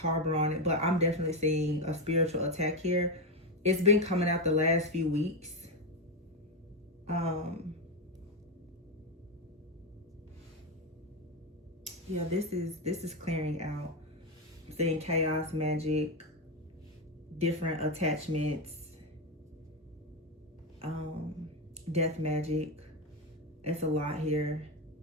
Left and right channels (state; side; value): normal; both; correlation 0.10